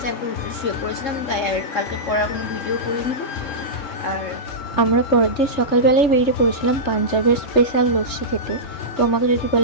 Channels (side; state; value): right; late; 3.2 ms